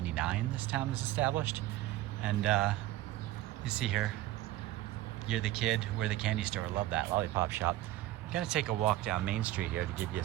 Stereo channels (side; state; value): left; quieter; 15.1 dB